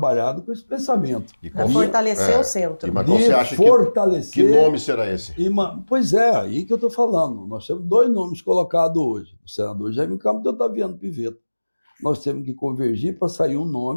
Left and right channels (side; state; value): both; inverted; correlation -1.00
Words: com esse pensamento. Para fortalecer o centro. Mas você acha que nome será esse? Pois é, aí que eu estou falando. Nós temos 2 nomes colocados hoje. O senador Jaime Campos e o Otaviano Pivetta. Nós temos que convergir para sair um